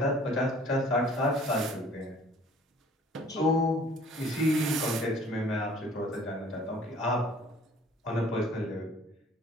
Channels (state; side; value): normal; both; correlation 0.53